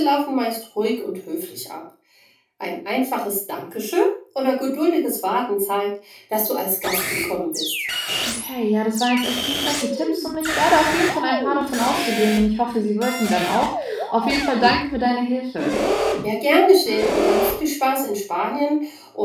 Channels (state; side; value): identical; both; correlation 1.00